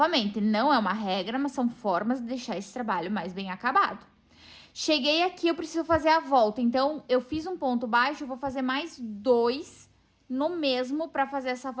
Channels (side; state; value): both; identical; correlation 1.00